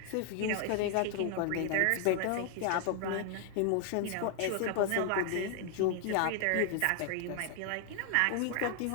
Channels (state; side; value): different; both; correlation 0.00